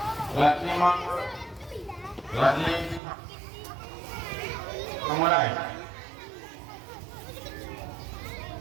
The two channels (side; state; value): left; drops out; at 3.0 s